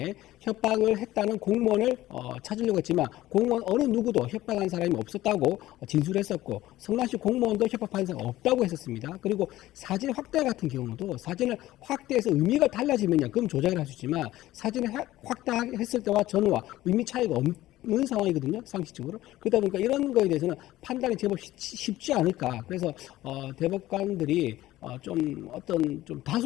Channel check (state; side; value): quieter; right; 15.6 dB